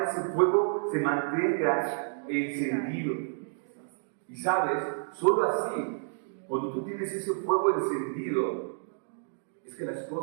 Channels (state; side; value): silent; left; digital silence